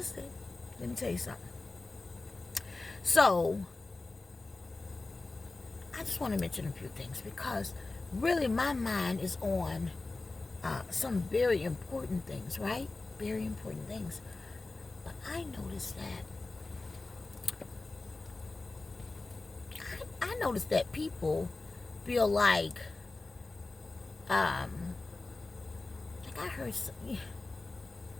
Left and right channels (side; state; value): right; quieter; 3.4 dB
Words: Let me tell you something. So, I just want to mention a few things because really my mind is on some very important things, right? Very important things. But I noticed that people feel like I heard